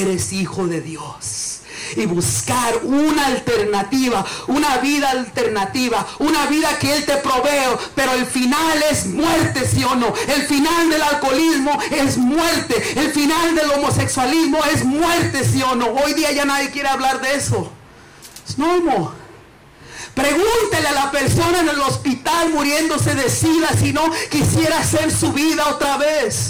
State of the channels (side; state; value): both; identical; correlation 1.00